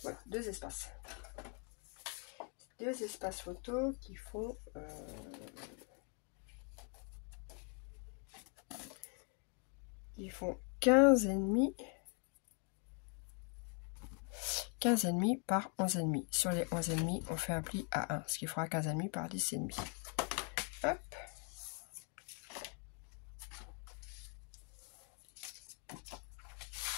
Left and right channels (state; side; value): quieter; right; 39.4 dB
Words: voilà, deux espaces. Deux espaces photo qui font 15,5 par 11,5. Sur les 11,5, on fait un pli à 1, ce qui fera 15,5 par 10,5. Hop.